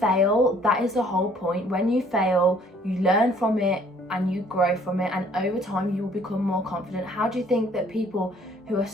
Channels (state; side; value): normal; both; correlation 0.59